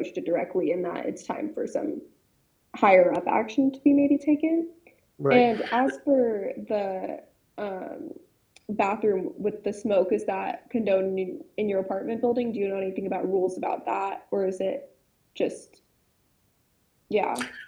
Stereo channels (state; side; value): identical; both; correlation 1.00